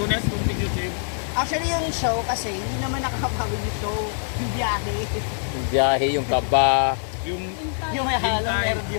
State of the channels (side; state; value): right; silent; digital silence